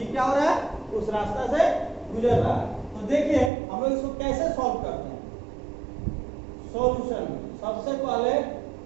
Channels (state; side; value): drops out; left; at 3.5 s